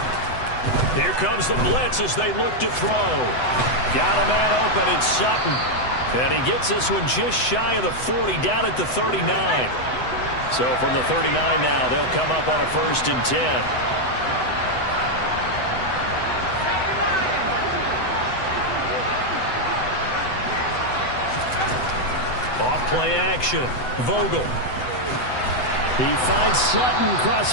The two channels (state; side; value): late; right; 8.0 ms